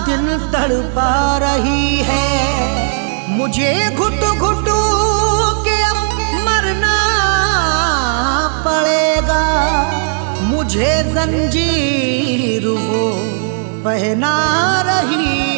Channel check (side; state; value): left; silent; 64 dB below the other